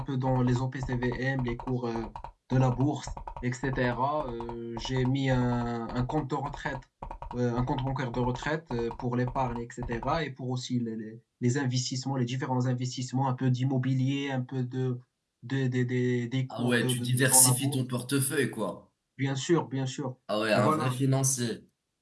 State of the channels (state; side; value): identical; both; correlation 1.00